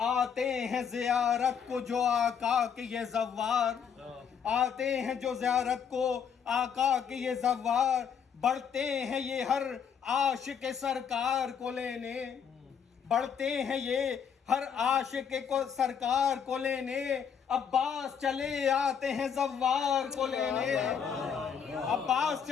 آتے ہیں زیارت کو جو آقا کے یہ زوار. آتے ہیں جو زیارت کو آقا کے یہ زوار. بڑھتے ہیں یہ ہر عاشق سرکار کو لینے. بڑھتے ہیں یہ ہر عاشق کو سرکار کو لینے. عباس چلے آتے ہیں زوار کو لینے. عباس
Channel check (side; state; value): right; quieter; 7.4 dB